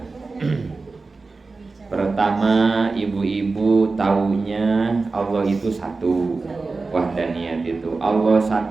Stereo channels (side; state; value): left; quieter; 3.9 dB